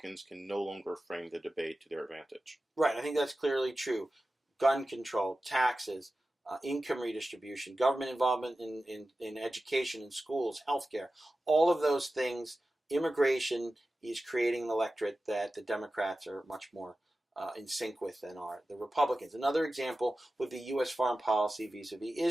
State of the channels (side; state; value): both; normal; correlation 0.94